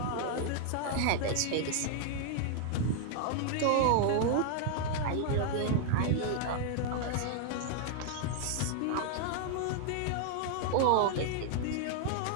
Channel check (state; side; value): different; both; correlation 0.00